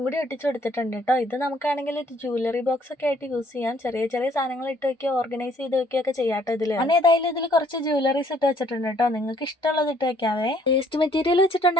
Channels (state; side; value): normal; both; correlation 0.64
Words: കൂടി ഒട്ടിച്ചു കൊടുത്തിട്ടുണ്ട് കേട്ടോ. ഇത് നമുക്കാണെങ്കിൽ ഒരു ജ്വല്ലറി ബോക്സ് ഒക്കെ ആയിട്ട് യൂസ് ചെയ്യാം. ചെറിയ ചെറിയ സാധനങ്ങൾ ഇട്ട് വെക്കുക, ഓർഗനൈസ് ചെയ്ത് വെക്കുകയൊക്കെ ചെയ്യാട്ടോ ഇതില്. ഞാൻ ഏതായാലും ഇതിൽ കുറച്ച് ജ്വല്ലറീസ് ഇട്ട് വെച്ചിട്ടുണ്ട് കേട്ടോ. നിങ്ങൾക്ക് ഇഷ്ടമുള്ളത് ഇട്ട് വെക്കാവേ. വേസ്റ്റ് മെറ്റീരിയൽ